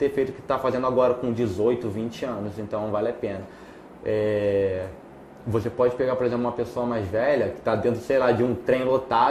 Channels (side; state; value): both; identical; correlation 1.00